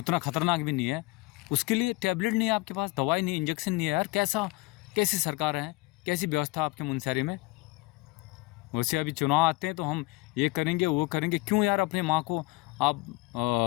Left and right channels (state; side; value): quieter; right; 22.2 dB